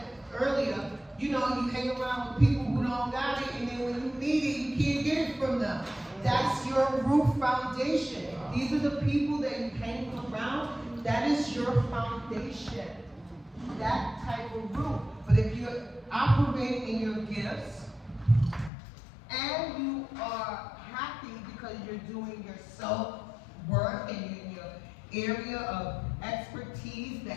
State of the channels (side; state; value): right; drops out; at 18.7 s